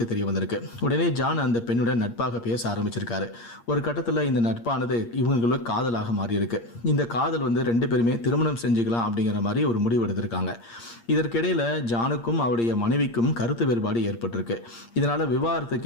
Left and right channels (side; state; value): right; late; 8.6 ms